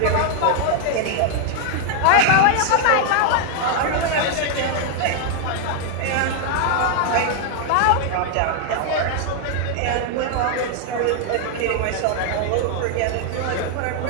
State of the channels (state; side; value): different; both; correlation 0.00